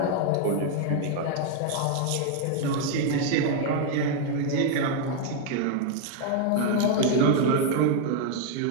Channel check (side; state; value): both; different; correlation 0.00